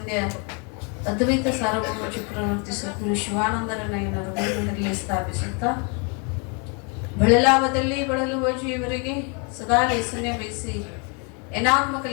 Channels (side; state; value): right; quieter; 34.9 dB